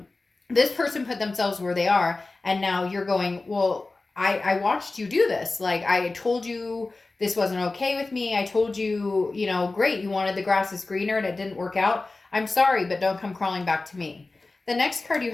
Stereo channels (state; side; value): quieter; right; 3.4 dB